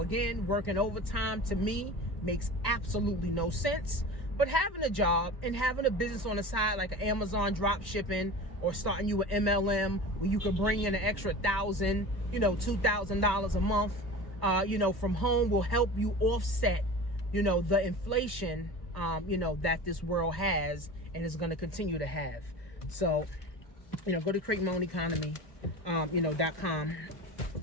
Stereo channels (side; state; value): right; late; 1.1 ms